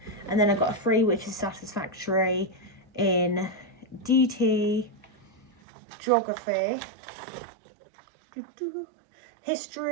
and then I got a 3, which is satisfactory in DT, geography,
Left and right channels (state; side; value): drops out; left; at 5.5 s